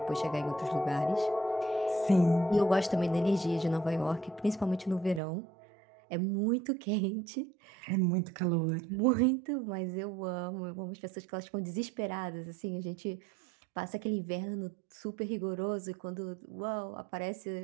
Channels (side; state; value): left; drops out; at 5.2 s